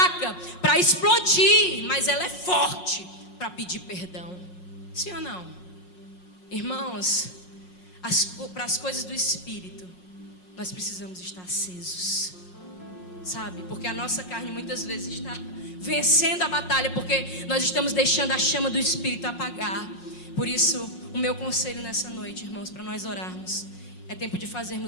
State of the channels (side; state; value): right; late; 5.5 ms